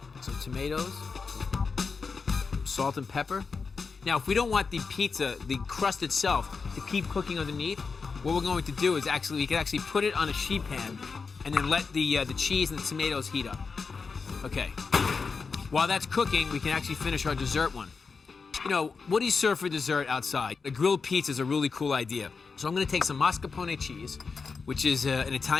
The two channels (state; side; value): quieter; right; 4.9 dB